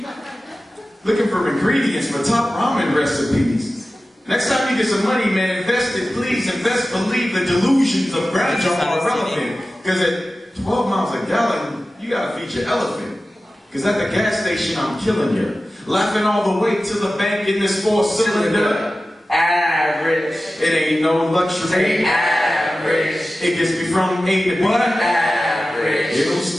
Looking for ingredients for top ramen recipes. Next time you get some money, man, invest it, please. Invest, believe the delusions of grandeur are irrelevant. Because at 12 miles a gallon, you gotta feed your elephant. Because at the gas station, I'm killing you. Laughing all the way to the bank in this 4-cylinder. Average. It ain't no luxury. Average. It gets me from A to B. What? Average. It'll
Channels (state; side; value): normal; both; correlation 0.95